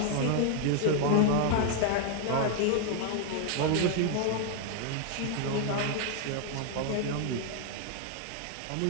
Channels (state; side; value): different; both; correlation 0.00